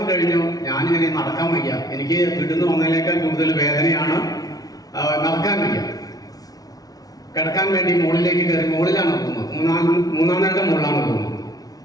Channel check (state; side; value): late; right; 0.18 ms